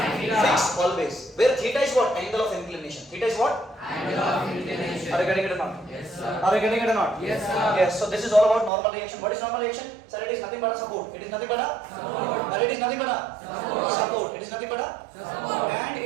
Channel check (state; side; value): drops out; left; at 8.7 s